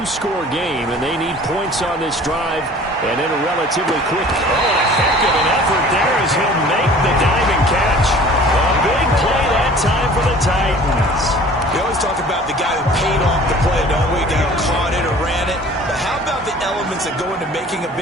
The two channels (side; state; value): both; normal; correlation 0.47